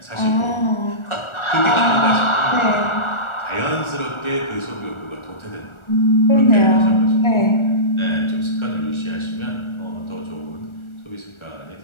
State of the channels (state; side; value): late; right; 1.4 ms